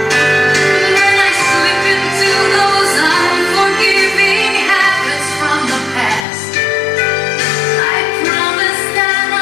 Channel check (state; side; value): drops out; right; at 6.2 s